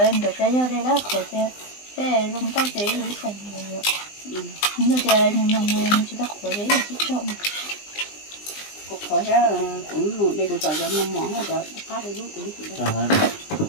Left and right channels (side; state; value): right; late; 20 ms